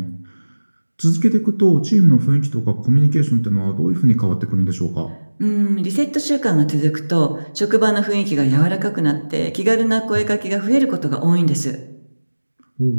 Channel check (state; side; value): inverted; both; correlation -1.00